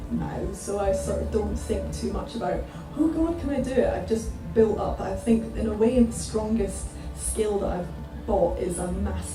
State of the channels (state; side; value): identical; both; correlation 1.00